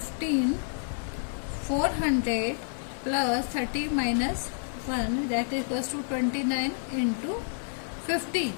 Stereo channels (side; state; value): right; silent; digital silence